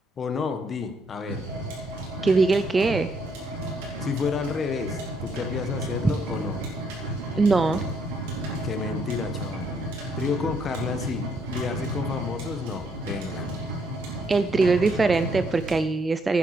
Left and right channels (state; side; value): normal; both; correlation 0.72